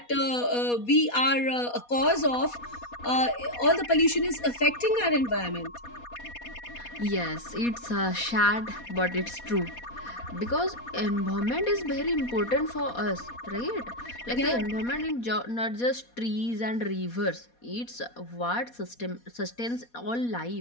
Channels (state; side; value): late; right; 4.2 ms